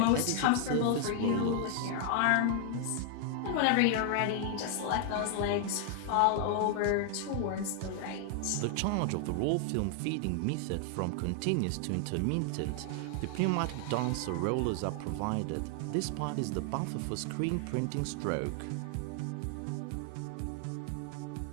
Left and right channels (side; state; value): both; different; correlation 0.00